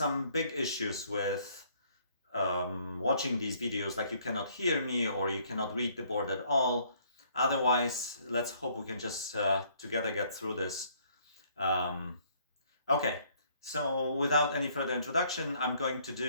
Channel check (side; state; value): both; inverted; correlation -0.63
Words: big issues with watching these videos, like you cannot hear me or you cannot read the board at all. Otherwise, let's hope we can just together get through this. Okay, so without any further introduction, I'm going to